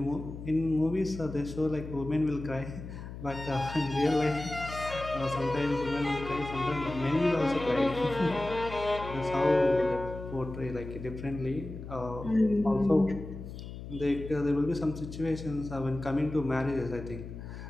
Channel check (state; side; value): noise; left; hum, 10 dB below the sound